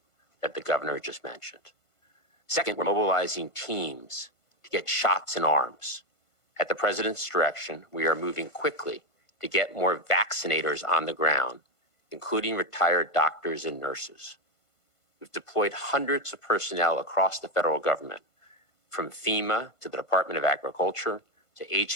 that the governor just mentioned. Second, we're mobilizing teams to get shots in arms. At the President's direction, we are moving quickly to get more vaccinators on the ground, including retired doctors and nurses. We've deployed hundreds of personnel across the federal government, from FEMA to the Department of Agriculture to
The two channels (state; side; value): late; right; 1.5 ms